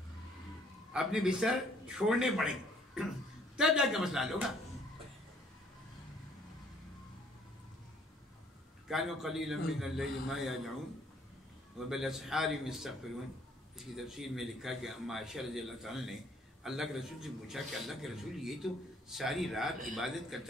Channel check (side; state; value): both; normal; correlation 0.61